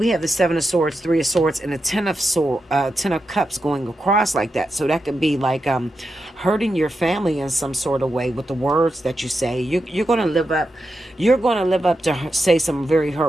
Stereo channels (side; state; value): both; normal; correlation 0.88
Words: have the Seven of Swords, Three of Swords, and the Ten of Cups going across like that. So that could be like hurting your family in some sort of way with the words that you say. You're going to live up. You're going to live up to say some very